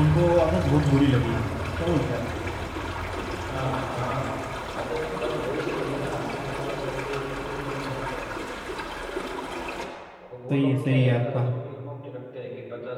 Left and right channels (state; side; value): identical; both; correlation 1.00